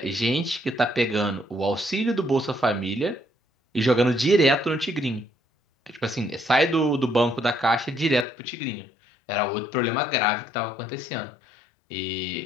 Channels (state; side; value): drops out; right; at 8.2 s